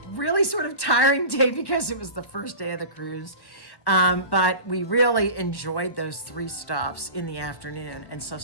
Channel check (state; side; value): late; right; 1.1 ms